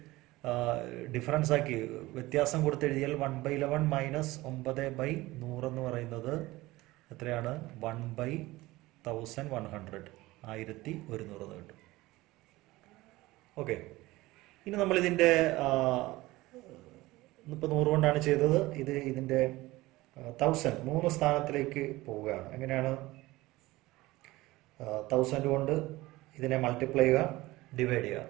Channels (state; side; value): quieter; left; 19.2 dB